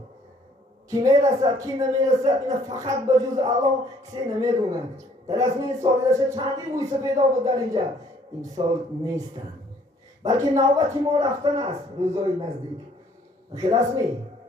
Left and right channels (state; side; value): normal; both; correlation 0.61